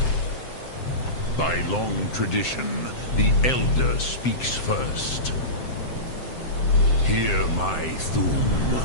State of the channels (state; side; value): late; right; 7.7 ms